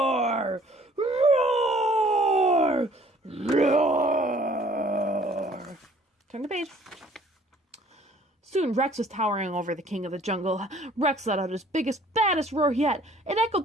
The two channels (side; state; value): both; normal; correlation 0.56